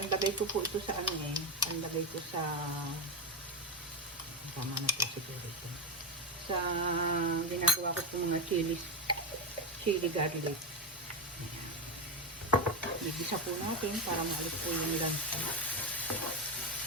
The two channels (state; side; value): normal; both; correlation 0.12